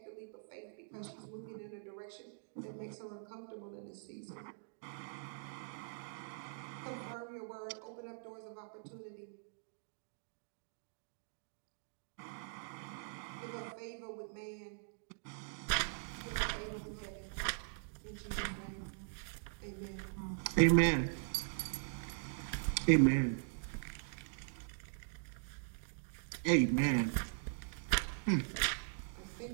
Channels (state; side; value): silent; left; digital silence